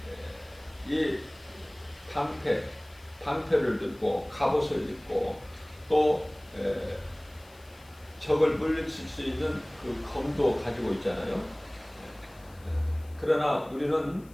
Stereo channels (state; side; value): noise; left; hiss, 27 dB below the sound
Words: 이 방패를 들고 갑옷을 입고 또 적을 물리칠 수 있는 그 검도 가지고 있잖아요. 그러나 우리는